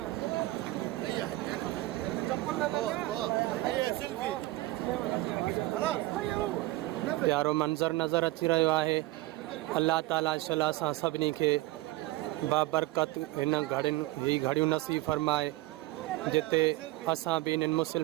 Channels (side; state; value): left; quieter; 18.6 dB